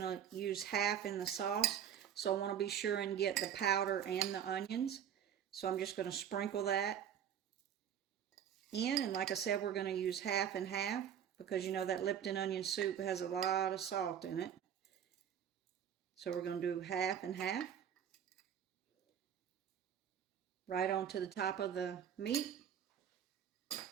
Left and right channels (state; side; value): quieter; left; 9.1 dB